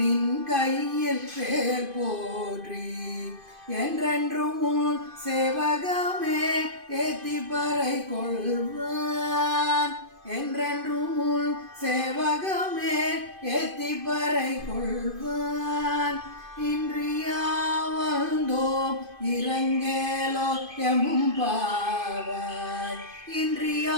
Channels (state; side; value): late; left; 2.5 ms